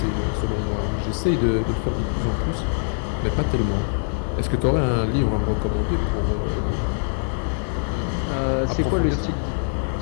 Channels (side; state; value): right; silent; digital silence